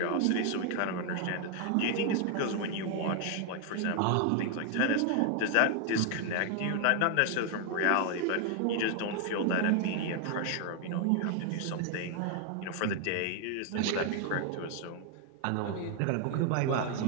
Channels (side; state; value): both; different; correlation 0.00